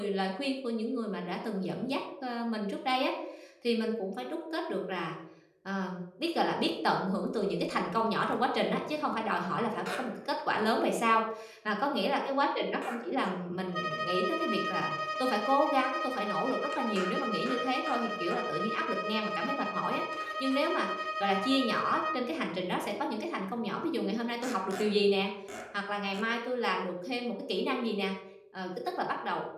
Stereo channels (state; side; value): identical; both; correlation 1.00